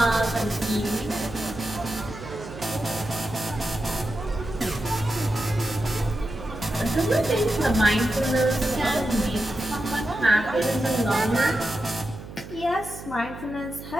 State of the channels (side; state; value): right; noise; hum, 13 dB below the sound